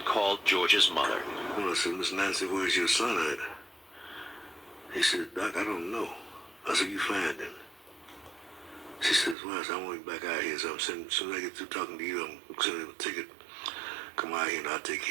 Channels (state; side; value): drops out; left; at 9.3 s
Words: called George's mother. Well, I said, Miss Nancy, where's your son at? He said, Doc, I don't know. I said, you find him. She says, well, I want him back out here. So as soon as I get through talking to you, I'm sending him a ticket. Come out here and I'll take